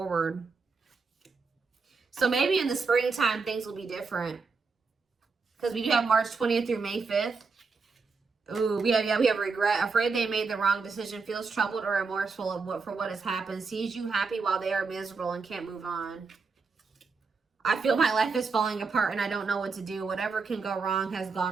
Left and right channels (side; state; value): left; quieter; 4.7 dB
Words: So maybe in the springtime, things will be different. Because we do have March 20th through May 5th. Ooh, we have regret. Afraid they made the wrong decision. Feels troubled or remorseful for what has happened. Sees you happy while they are miserable and can't move on. I feel my life is falling apart and I don't know what to do. Whatever can go wrong has